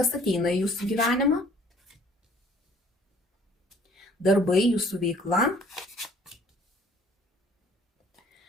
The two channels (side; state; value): both; normal; correlation 0.55